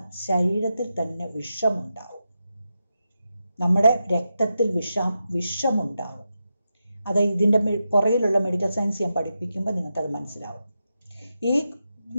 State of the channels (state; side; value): inverted; both; correlation -0.88